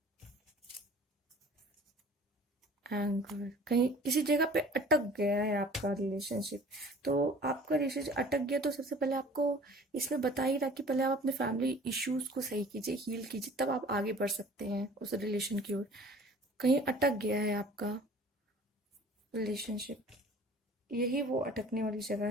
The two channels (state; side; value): normal; both; correlation 0.48